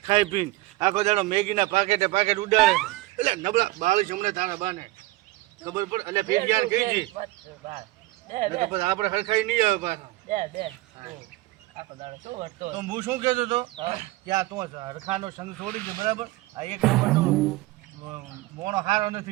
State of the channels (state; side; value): quieter; left; 19.2 dB